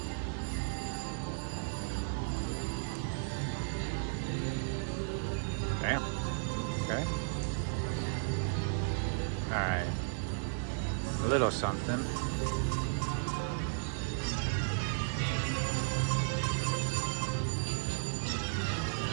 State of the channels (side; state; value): left; silent; digital silence